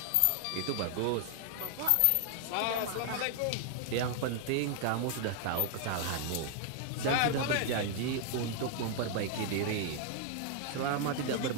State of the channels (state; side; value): different; both; correlation 0.00